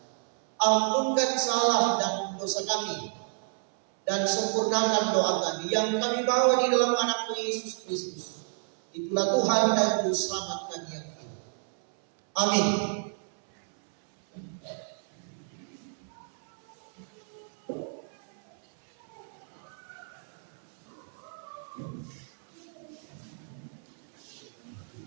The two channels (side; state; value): left; silent; 58 dB below the other